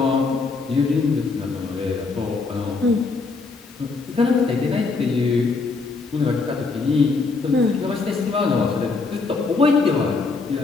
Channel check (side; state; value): right; quieter; 4.1 dB